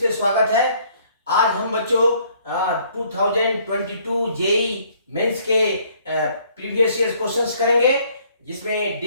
स्वागत है। आज हम बच्चों 2022 जेई मेंस के प्रीवियस ईयर क्वेश्चंस करेंगे, जिसमें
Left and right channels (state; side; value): inverted; both; correlation -0.62